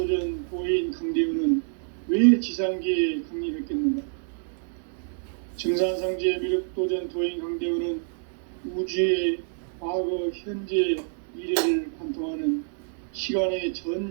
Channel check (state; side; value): silent; left; 60 dB below the other